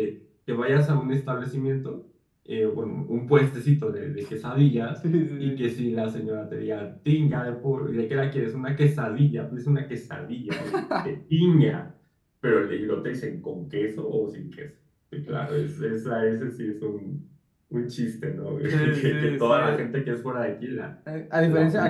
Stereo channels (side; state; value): both; identical; correlation 1.00